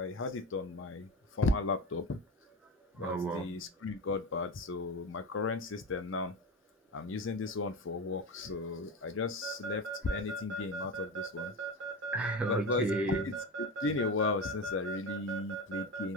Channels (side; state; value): both; normal; correlation 0.24